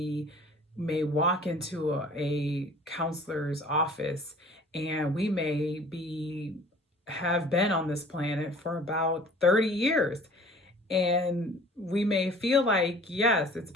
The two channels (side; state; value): both; normal; correlation 0.49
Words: may walk into a counselor's office, and we may be have been on this planet for about 30 years. And we may feel like, yes, it's